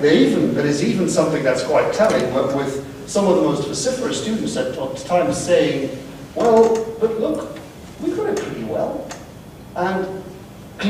there is even something that's quite telling, with some of the most vociferous students at times saying, well, but look, we got it pretty well. And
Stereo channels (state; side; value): identical; both; correlation 1.00